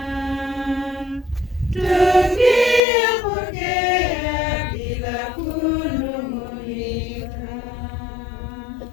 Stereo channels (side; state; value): right; drops out; at 2.8 s